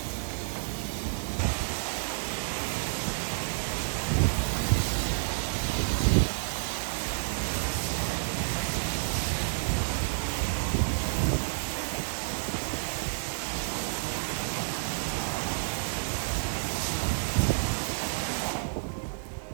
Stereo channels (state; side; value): silent; left; digital silence